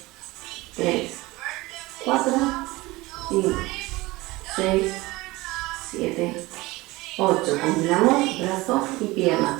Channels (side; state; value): left; quieter; 20.9 dB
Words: 3, 4, 5, 6, 7, 8. Combinamos brazo y pierna.